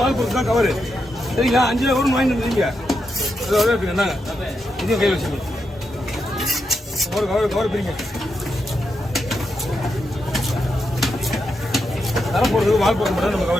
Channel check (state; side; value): normal; both; correlation 0.84